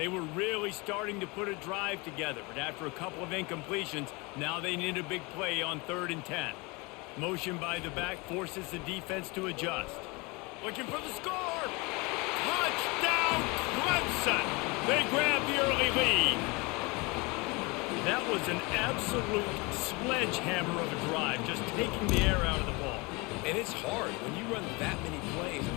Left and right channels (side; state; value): right; quieter; 26.7 dB